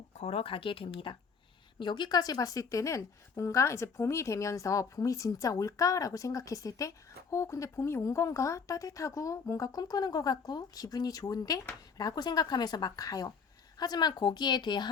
걸어가게 됩니다. 여기까지 봤을 때는 뭔가 이제 봄이 되면서 봄이 진짜 올까라고 생각했을 때 근데 봄이 온 건가? 따뜻하고 뭔가 꿈꾸는 것 같고 기분이 좋은데? 라고 생각하면서 막 가요. 하지만 거기에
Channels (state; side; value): quieter; right; 5.6 dB